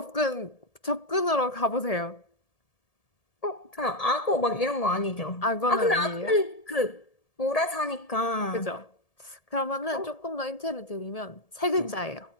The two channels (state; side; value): late; right; 1.7 ms